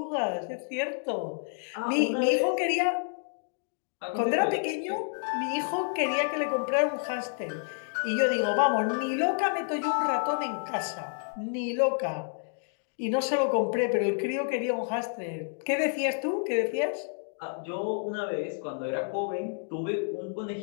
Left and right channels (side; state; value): right; silent; 58 dB below the other